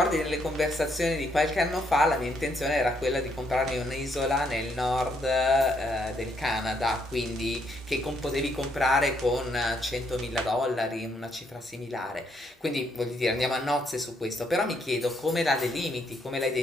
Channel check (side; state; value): both; normal; correlation 0.73